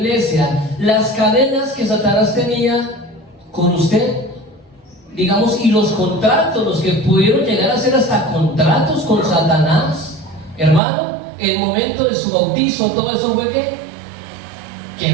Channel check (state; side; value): drops out; left; at 10.8 s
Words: las cadenas que Satanás tenía con usted, digamos, y los contratos, los que pudieron llegar a hacer hasta contratos con Satanás, hermano, el momento de su bautizo, todo eso fue ¿qué?